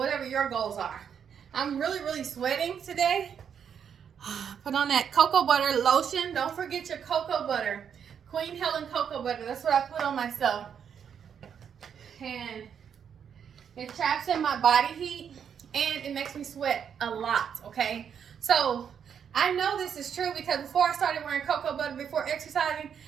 your goals are. I'm really sweating today. Put on that cocoa butter lotion. Don't forget your cocoa butter. Queen Helen cocoa butter. That's what I put on myself. And it traps in my body heat and it makes me sweat a lot, okay? So I know this is true because before I started wearing cocoa butter before exercising,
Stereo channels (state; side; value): quieter; left; 7.8 dB